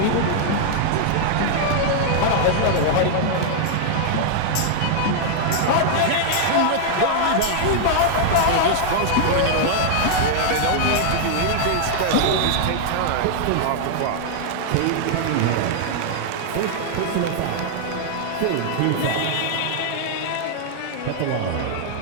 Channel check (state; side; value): different; both; correlation -0.01